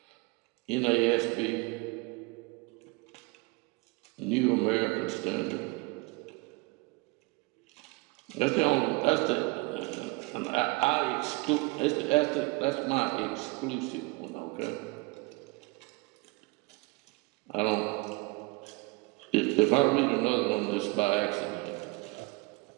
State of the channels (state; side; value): quieter; left; 26.0 dB